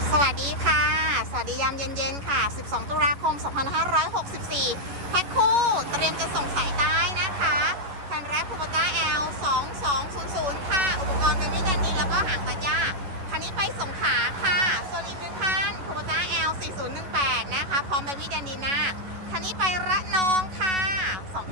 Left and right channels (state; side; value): late; left; 11 ms